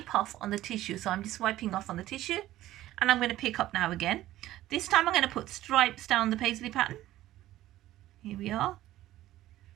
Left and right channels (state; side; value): quieter; left; 14.7 dB